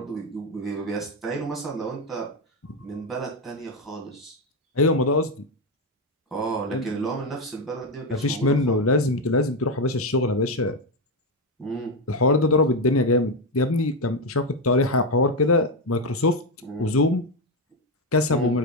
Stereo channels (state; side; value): normal; both; correlation 0.09